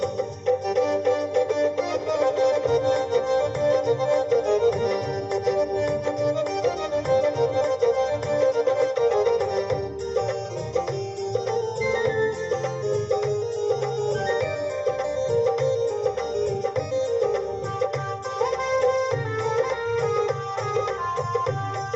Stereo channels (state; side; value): identical; both; correlation 1.00